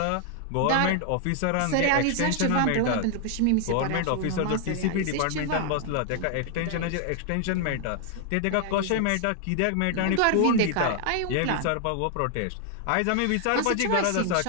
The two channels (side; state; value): both; different; correlation 0.00